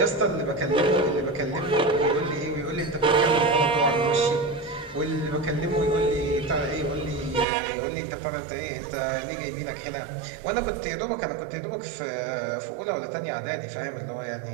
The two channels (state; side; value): drops out; left; at 7.5 s